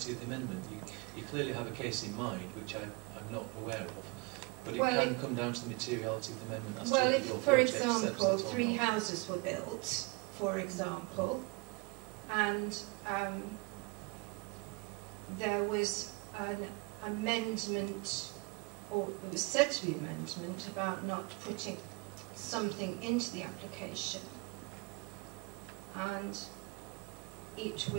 of the amendment. You clearly have a case in mind, which I'm not aware of, but it can come down to the materiality of the amendment. As well, to if, your for example, 3 not. houses were built, for example, and there was an amendment, or it was said to be an amendment, about not putting something into the application, and it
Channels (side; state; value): left; quieter; 28.5 dB